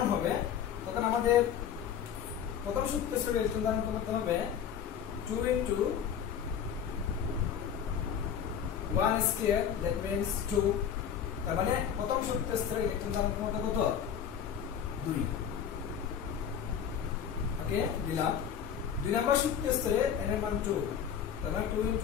হবে তখন আমাদের প্রথম শক্তি স্তরের ইলেকট্রন ধারণ ক্ষমতা হবে 2 into 1², that means 2, তার মানে প্রথম শক্তি স্তরের ইলেকট্রন ধারণ ক্ষমতা কত 2। ওকে, দিলাম। 2 নম্বর শক্তি স্তরে n এর মান 2, তার মানে 2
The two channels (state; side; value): quieter; right; 8.4 dB